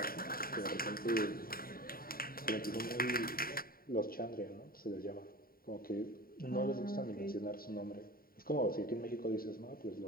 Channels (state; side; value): late; right; 0.43 ms